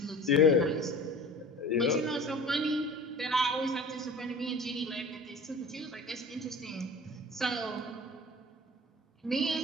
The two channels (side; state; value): both; normal; correlation 0.40